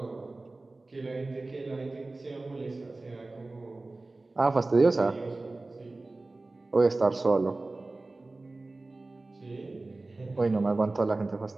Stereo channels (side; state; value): left; quieter; 3.2 dB